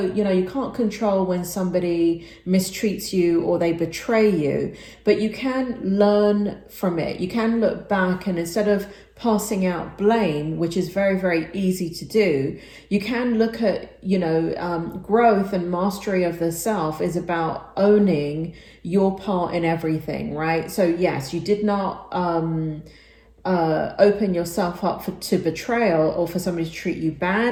you know, you can't control when somebody mistreats you or they betray you, but you can learn from it. You can look back, and instead of passing out blame, which is very, very easy to do, you can look at, you know, growth and mastery of the self is about owning your part in everything, right? So yes, you did not open yourself up to betrayal, or for somebody to treat you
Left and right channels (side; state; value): both; identical; correlation 1.00